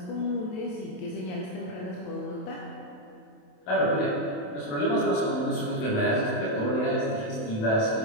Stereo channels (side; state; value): right; late; 27 ms